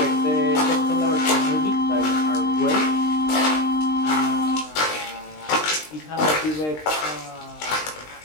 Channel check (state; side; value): late; right; 20 ms